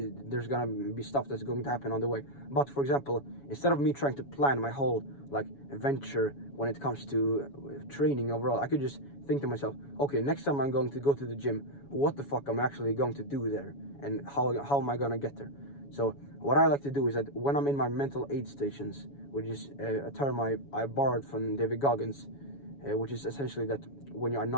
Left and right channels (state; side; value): late; right; 7.1 ms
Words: gonna be stuff that's going to happen on the way. But for example, instead of me trying to plan my whole like adventure when it comes to training overall, I could just think to myself, okay, next time I'm going to go to the gym, what the fuck am I actually going to do there, and how am I gonna get there? So what I like to do is that when I'm in my mental aid stations, which is a term I borrowed from David Goggins, which is essentially that when you are